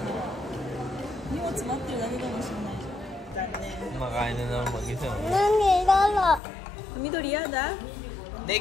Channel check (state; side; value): drops out; right; at 6.4 s